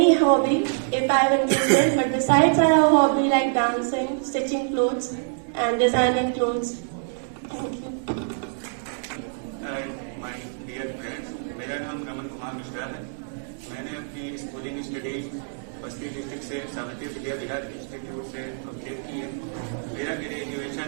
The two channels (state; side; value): silent; left; digital silence